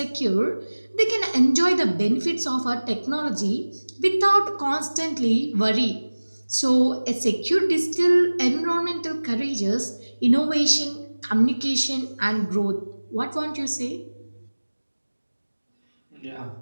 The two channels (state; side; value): inverted; both; correlation -1.00